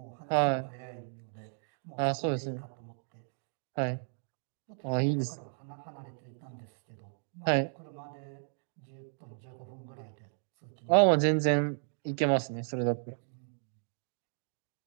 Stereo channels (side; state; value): left; silent; digital silence